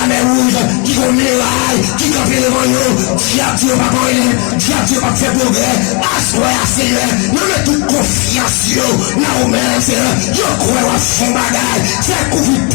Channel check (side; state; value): right; quieter; 33.5 dB